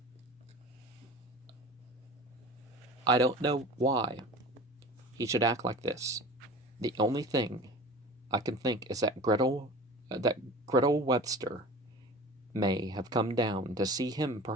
I don't know why he should act like this. The only thing I can think is that Gretel Webster may have come down to see him,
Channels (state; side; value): normal; both; correlation 0.38